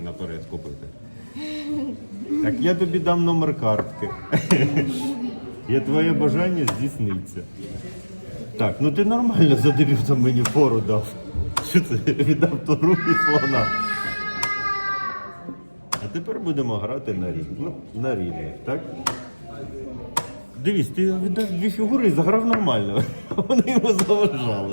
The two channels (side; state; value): both; inverted; correlation -1.00